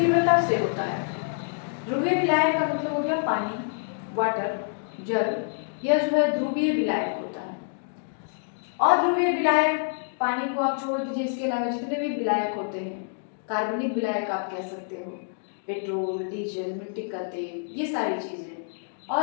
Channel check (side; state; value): right; silent; digital silence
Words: से होता है। ध्रुवीय विलायक का मतलब हो गया पानी, वाटर, जल। यह जो है ध्रुवीय विलायक होता है। अध्रुवीय विलायक, पानी को आप छोड़ दीजिए, इसके अलावा जितने भी विलायक होते हैं, कार्बनिक विलायक आप कह सकते हो, पेट्रोल, डीजल, मिट्टी का तेल, ये सारी चीजें